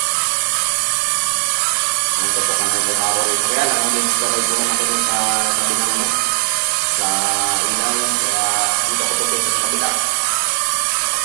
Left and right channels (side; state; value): left; silent; digital silence